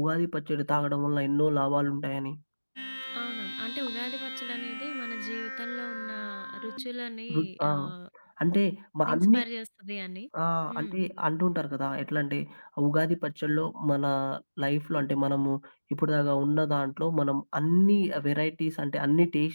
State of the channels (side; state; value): both; inverted; correlation -1.00